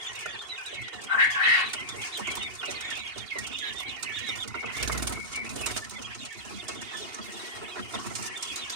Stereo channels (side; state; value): left; late; 2.8 ms